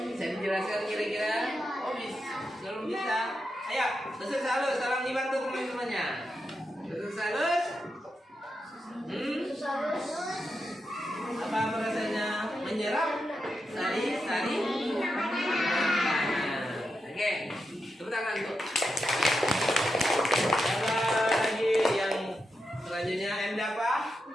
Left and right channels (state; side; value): normal; both; correlation 0.86